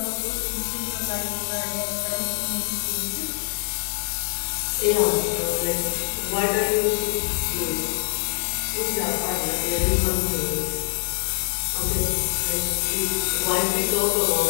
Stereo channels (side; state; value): right; silent; digital silence